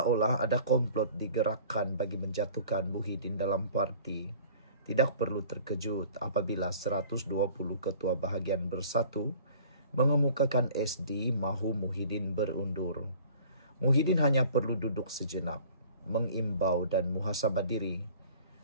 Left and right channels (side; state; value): both; inverted; correlation -0.49